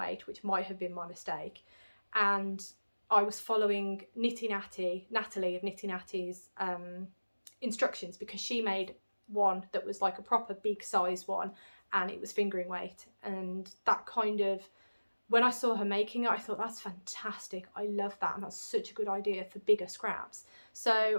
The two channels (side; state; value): both; inverted; correlation -1.00